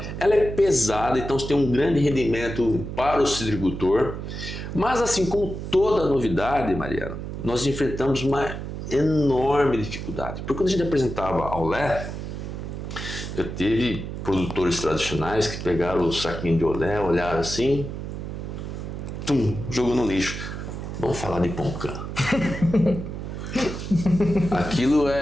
ela é pesada, então você tem um grande rendimento para o citricultor. Mas assim como toda novidade, Mariana, nós enfrentamos uma enorme dificuldade. Porque quando a gente apresentava a Olé, eu tive produtores tradicionais que pegaram o saquinho de Olé, olharam assim, jogou no lixo. Vamos falar de Poncã. Aquilo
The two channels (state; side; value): noise; right; hum, 7 dB below the sound